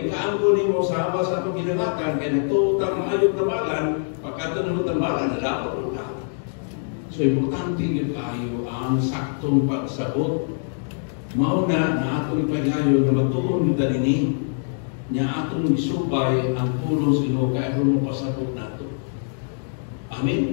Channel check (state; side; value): silent; right; digital silence